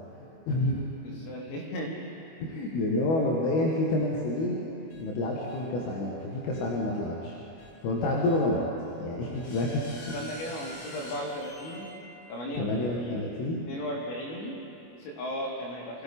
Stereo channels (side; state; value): right; late; 25 ms